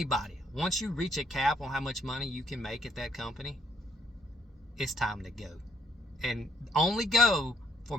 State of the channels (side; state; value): both; normal; correlation 0.68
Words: once you reach a cap on how much money you can make at that company, it's time to go. And only go for